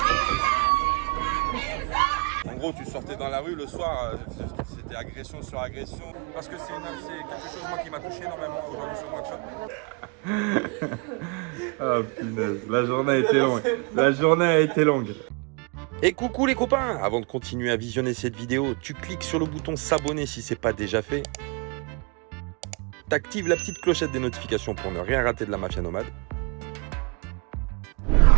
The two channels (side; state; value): left; quieter; 32.3 dB